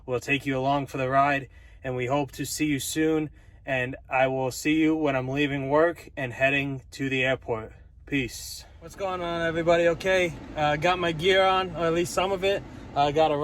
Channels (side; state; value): both; identical; correlation 1.00